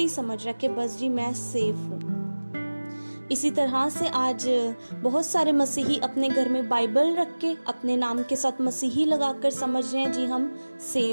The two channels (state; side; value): inverted; both; correlation -1.00